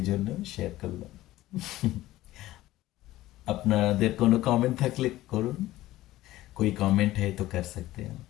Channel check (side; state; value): right; quieter; 16.1 dB